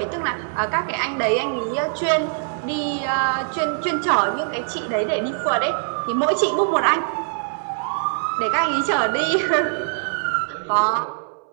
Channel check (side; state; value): left; silent; 63 dB below the other